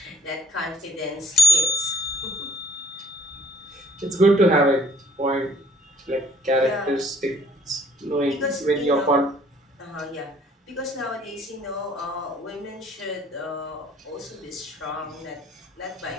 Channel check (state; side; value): normal; both; correlation 0.60